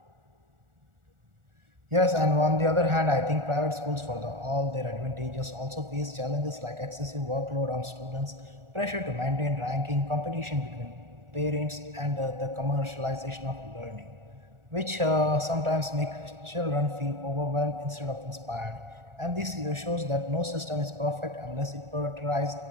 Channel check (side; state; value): left; late; 1.4 ms